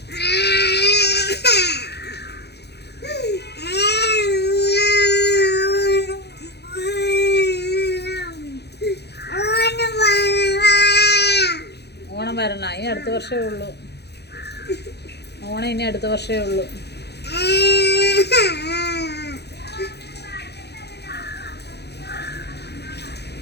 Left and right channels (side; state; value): right; late; 0.48 ms